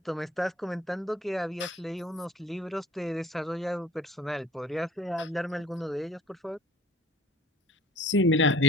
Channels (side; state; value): both; normal; correlation 0.51